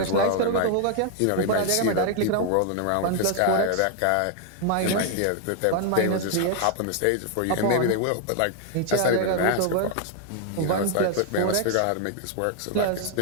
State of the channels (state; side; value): different; both; correlation 0.00